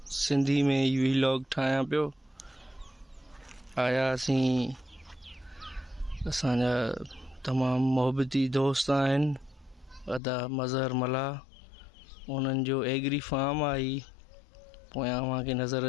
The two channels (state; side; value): drops out; right; at 10.2 s